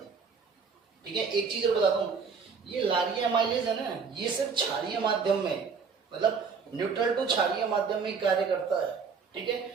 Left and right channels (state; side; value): quieter; left; 5.6 dB